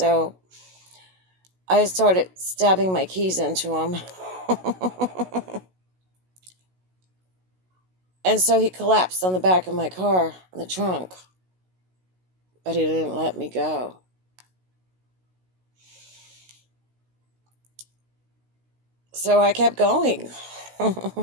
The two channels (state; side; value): late; left; 16 ms